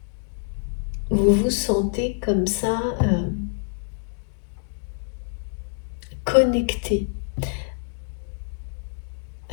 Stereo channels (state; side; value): silent; right; digital silence